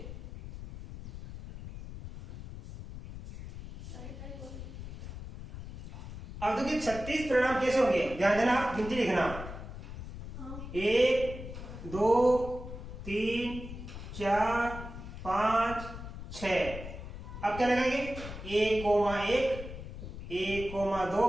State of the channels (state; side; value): noise; left; rumble, 10 dB below the sound